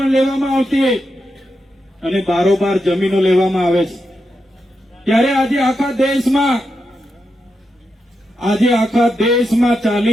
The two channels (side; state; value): both; normal; correlation 0.86